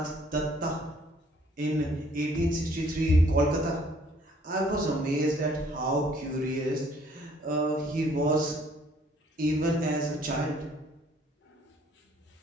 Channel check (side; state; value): both; normal; correlation 0.61